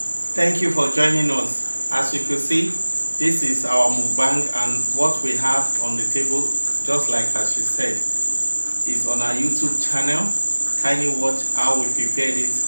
thank you for joining us. As you can see, this is our mukbang, and what we have on the table, just like as she said, is on our YouTube channel. Kindly watch how we prepared it.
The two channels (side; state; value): both; inverted; correlation -1.00